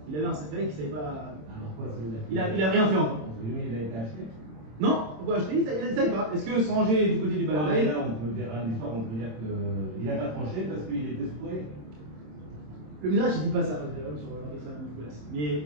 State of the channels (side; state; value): left; late; 27 ms